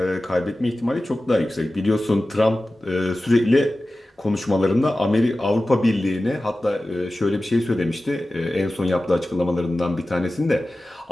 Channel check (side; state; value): both; normal; correlation 0.95